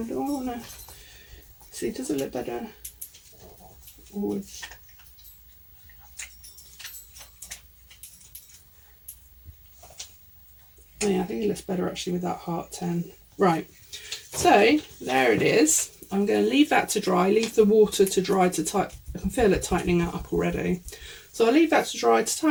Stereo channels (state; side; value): identical; both; correlation 1.00